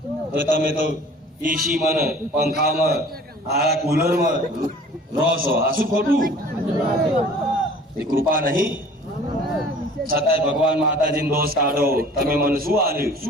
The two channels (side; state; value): both; normal; correlation 0.48